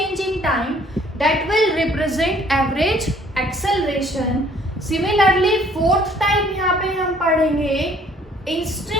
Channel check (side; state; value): both; normal; correlation 0.59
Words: in time, that will represent average acceleration. Similarly fourth type यहाँ पे हम पढ़ेंगे